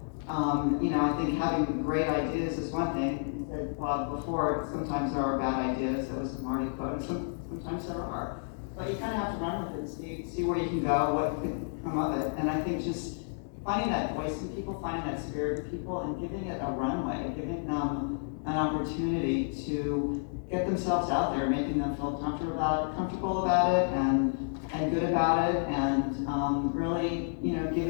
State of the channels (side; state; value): right; silent; digital silence